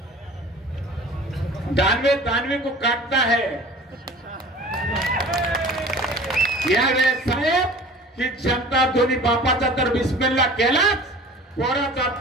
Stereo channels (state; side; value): normal; both; correlation 0.43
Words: दानवे को काटता है. यावेळेस साहेब ही जनता दोन्ही बापाचा तर बिस्मिल्ला केलाच, पोराचा